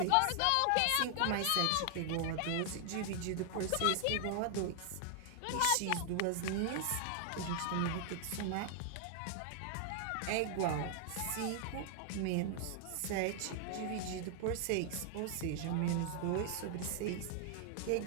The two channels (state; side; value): different; both; correlation 0.00